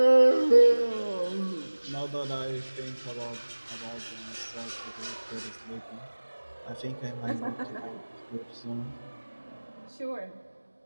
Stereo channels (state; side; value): inverted; both; correlation -1.00